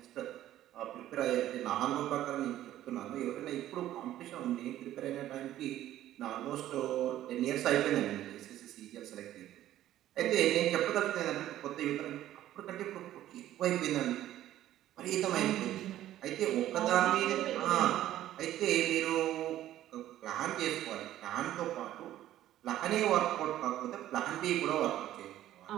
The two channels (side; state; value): left; quieter; 13.2 dB